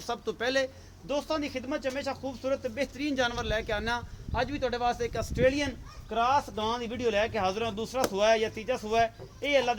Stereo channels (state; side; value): identical; both; correlation 1.00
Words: ਤੋਂ ਪਹਿਲੇ। ਦੋਸਤਾਂ ਦੀ ਖਿਦਮਤ 'ਚ ਹਮੇਸ਼ਾ ਖੂਬਸੂਰਤ ਤੇ ਬਿਹਤਰੀਨ ਜਾਨਵਰ ਲੈ ਕੇ ਆਉਂਦਾ। ਅੱਜ ਵੀ ਤੁਹਾਡੇ ਵਾਸਤੇ ਇੱਕ ਆਸਟ੍ਰੇਲੀਅਨ ਕ੍ਰਾਸ ਗਾਂ ਦੀ ਵੀਡੀਓ ਲੈ ਕੇ ਹਾਜ਼ਰ ਹਾਂ। ਦੂਸਰਾ ਸੂਆ ਹੈ ਜਾਂ ਤੀਜਾ ਸੂਆ ਹੈ, ਇਹ ਅੱਲਾ